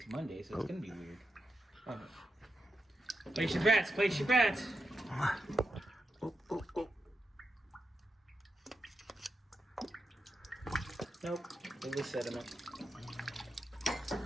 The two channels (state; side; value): normal; both; correlation 0.87